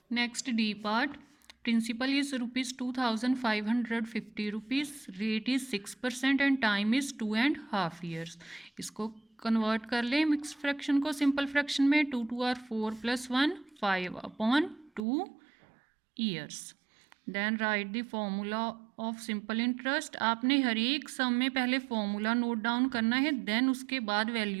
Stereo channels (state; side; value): drops out; left; at 15.0 s